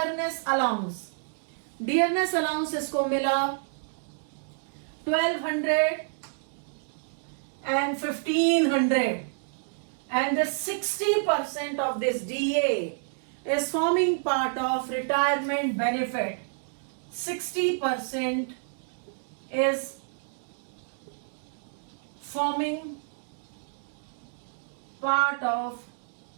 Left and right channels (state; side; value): silent; left; digital silence